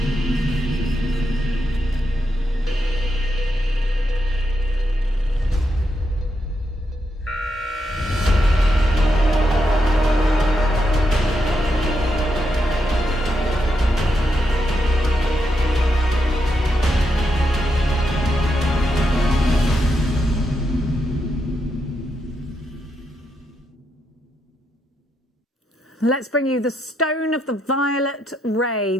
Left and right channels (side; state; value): both; normal; correlation 0.82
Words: Let's bring you the stone of the violet ray.